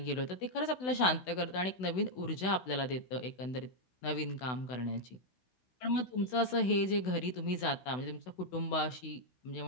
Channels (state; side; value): late; right; 16 ms